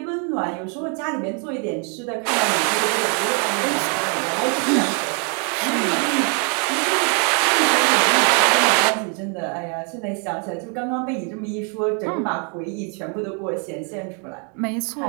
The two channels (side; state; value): left; quieter; 38.6 dB